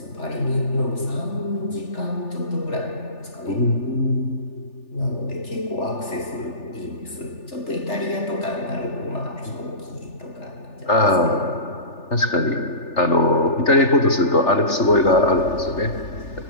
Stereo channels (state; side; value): late; right; 3.4 ms